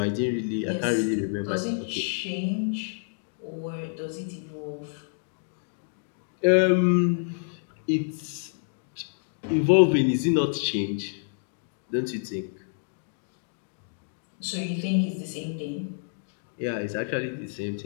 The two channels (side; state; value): right; silent; digital silence